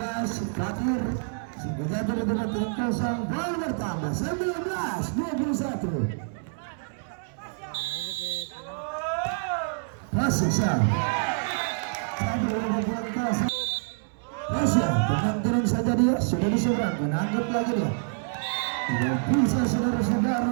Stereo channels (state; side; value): silent; left; 60 dB below the other